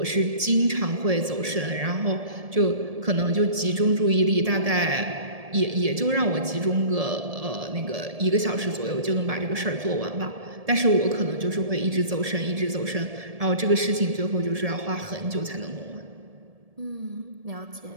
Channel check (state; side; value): late; left; 1.7 ms